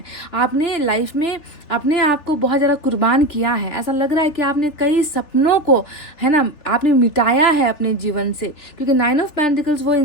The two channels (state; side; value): late; right; 3.4 ms